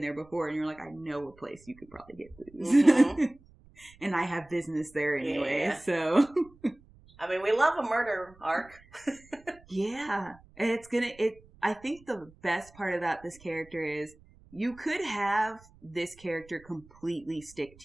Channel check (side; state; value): right; noise; rumble, 26 dB below the sound